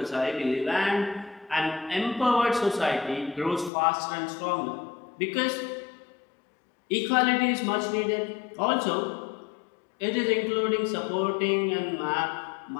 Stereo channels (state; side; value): drops out; right; at 3.7 s